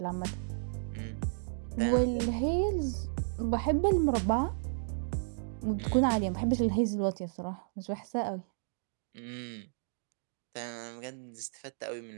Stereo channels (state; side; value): silent; left; digital silence